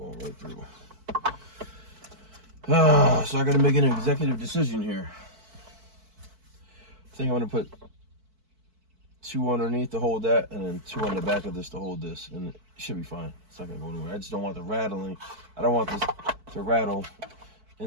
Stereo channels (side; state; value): left; late; 4.5 ms